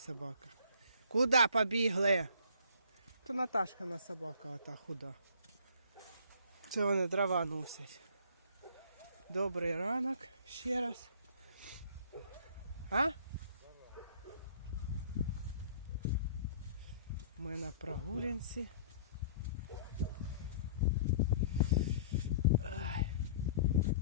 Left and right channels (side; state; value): both; inverted; correlation -0.51